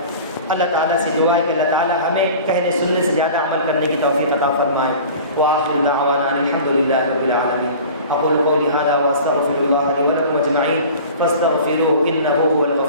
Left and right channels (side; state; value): both; inverted; correlation -0.41